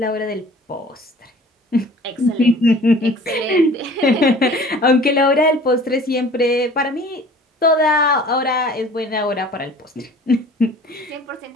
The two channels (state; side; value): normal; both; correlation 0.47